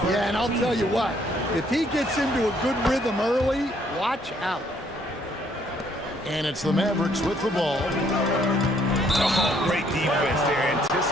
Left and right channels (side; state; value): both; normal; correlation 0.66